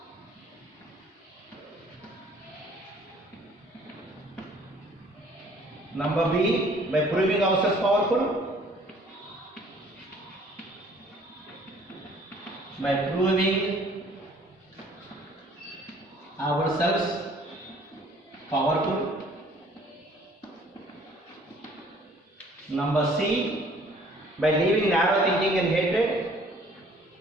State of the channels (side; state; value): both; normal; correlation 0.56